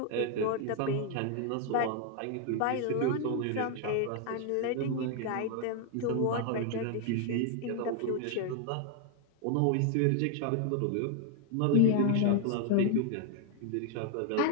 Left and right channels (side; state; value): both; different; correlation 0.00